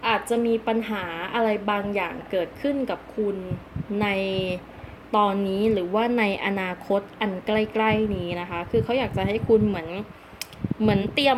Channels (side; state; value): both; identical; correlation 1.00